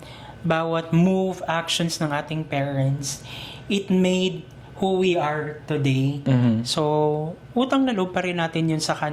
move, actions ng ating parents, it made who we are today. So, utang na loob pa rin natin yun sa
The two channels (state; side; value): identical; both; correlation 1.00